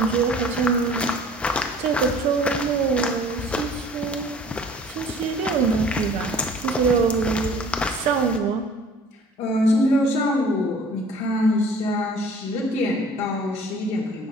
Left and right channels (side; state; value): both; normal; correlation 0.49